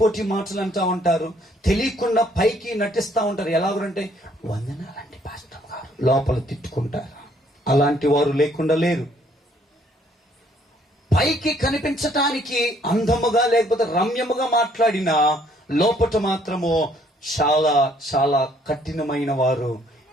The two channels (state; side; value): normal; both; correlation 0.64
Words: మాటలు అంటా ఉంటారు, తెలియకుండా పైకి నటిస్తా ఉంటారు. ఎలాగంటే వందనాలంటే పాస్టర్ గారు, లోపల తిట్టుకుంటారు. అలాంటి వారు లేకుండా లేరు. పైకి కనిపించటానికి అందముగా లేకపోతే రమ్యముగా మాట్లాడినా లోపట మాత్రము చాలా చాలా కఠినమైన వారు